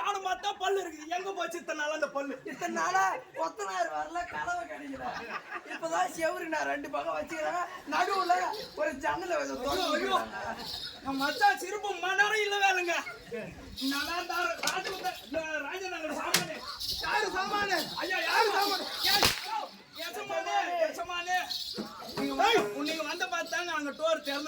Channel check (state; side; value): identical; both; correlation 1.00